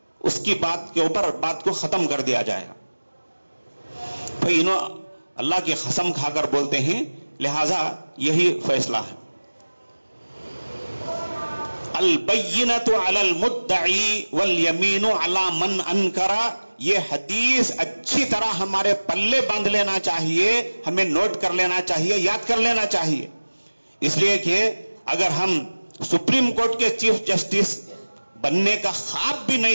اس کی بات کے اوپر بات کو ختم کر دیا جائے گا. بھئی انہوں اللہ کی قسم کھا کر بولتے ہیں, لہذا یہی فیصلہ ہے. البینۃ علی المدعی والیمین علی من انکر. یہ حدیث اچھی طرح ہمارے پلے باندھ لینا چاہیے, ہمیں نوٹ کر لینا چاہیے, یاد کر لینا چاہیے. اس لیے کہ اگر ہم سپریم کورٹ کے چیف جسٹس بننے کا خواب بھی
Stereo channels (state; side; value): inverted; both; correlation -1.00